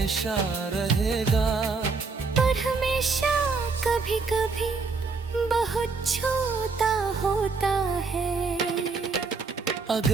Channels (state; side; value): quieter; left; 4.4 dB